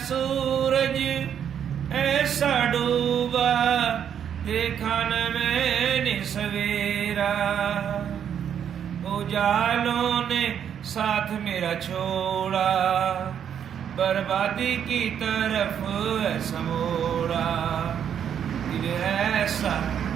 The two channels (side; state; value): left; quieter; 8.7 dB